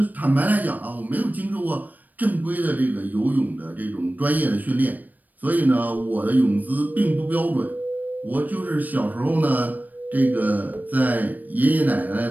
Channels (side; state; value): left; late; 0.083 ms